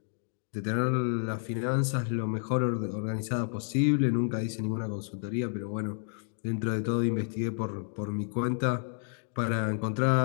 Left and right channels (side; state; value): right; silent; digital silence